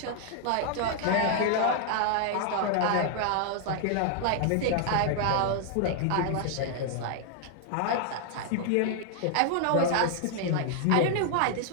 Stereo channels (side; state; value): both; different; correlation 0.00